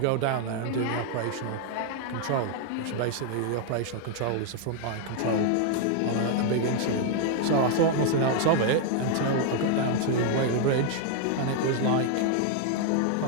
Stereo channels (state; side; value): different; both; correlation 0.00